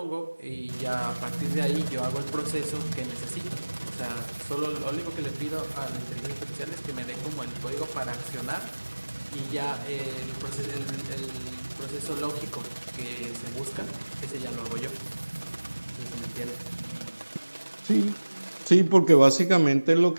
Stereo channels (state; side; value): inverted; both; correlation -1.00